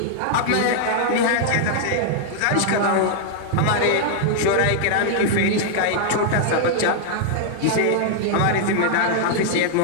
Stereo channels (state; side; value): different; both; correlation -0.01